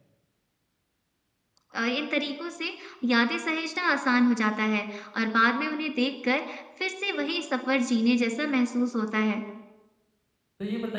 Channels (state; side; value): identical; both; correlation 1.00